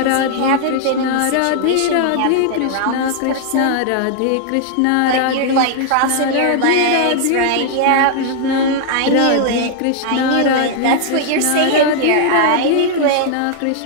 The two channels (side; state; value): both; different; correlation 0.00